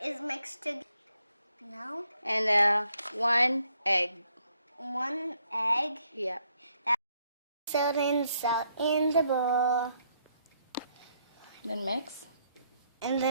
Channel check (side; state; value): both; inverted; correlation -0.73